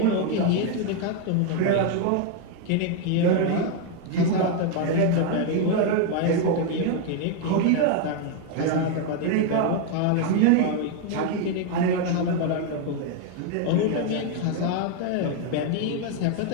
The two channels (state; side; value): different; both; correlation 0.01